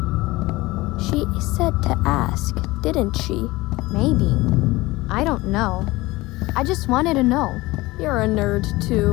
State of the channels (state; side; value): quieter; right; 20.3 dB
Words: She said to ask, didn't she? Maybe. I don't know. I just wanted to know. You're a nerd,